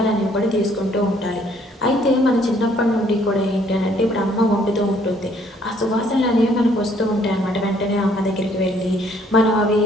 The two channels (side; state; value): both; normal; correlation 0.64